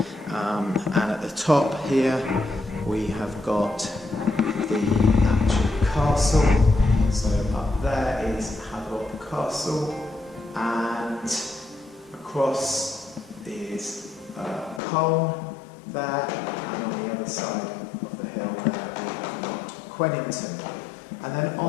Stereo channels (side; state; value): right; drops out; at 14.8 s